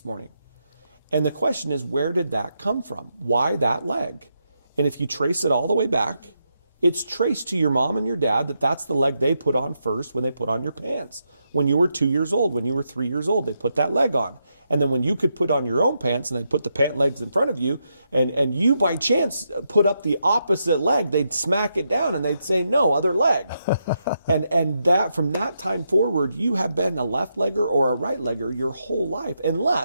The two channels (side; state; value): both; inverted; correlation -0.82